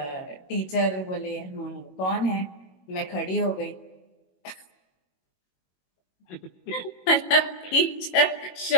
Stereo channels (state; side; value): late; right; 22 ms